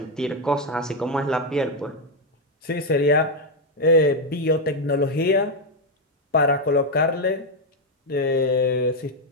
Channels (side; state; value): both; normal; correlation 0.03